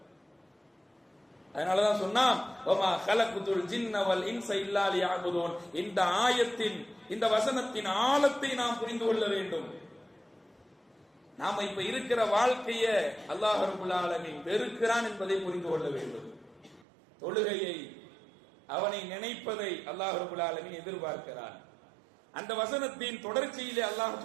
அதனாலதான் சொன்னா வமா கலக்குதுல் ஜின்ன வல் இன்ஸ இல்லா லியஅபுதூன். இந்த ஆயத்தின் இந்த வசனத்தின் ஆழத்தை நாம் புரிந்து கொள்ள வேண்டும். நாம இப்ப இருக்கிற வாழ்க்கைய அல்லாஹ் ரப்பல் ஆலமீன் வெறுக்கிறான் என்பதை புரிந்து கொள்ள வேண்டும். தொழுகையை அவனை நினைப்பதை அல்லாஹ் ரப்பல் ஆலமீன் எதிர்பார்க்கிறான். அந்த வசனத்தின் தொடர்ச்சியிலே அல்லாஹ்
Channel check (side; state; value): left; drops out; at 16.9 s